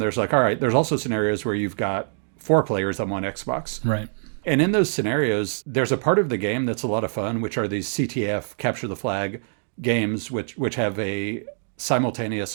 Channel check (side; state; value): left; silent; digital silence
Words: like, all right, there's also scenarios where you've got 4 players on one Xbox. Right. And in those scenarios, there's a part of the game that's a lot of fun, which are these CTF, capture the flag games, which have a